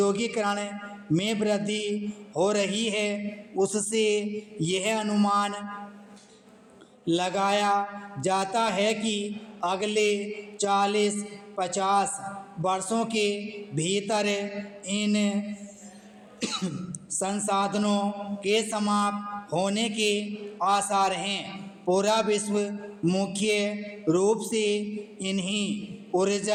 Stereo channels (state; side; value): identical; both; correlation 1.00